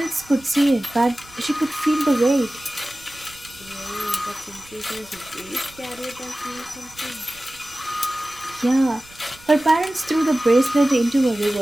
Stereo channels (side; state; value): right; noise; rumble, 24 dB below the sound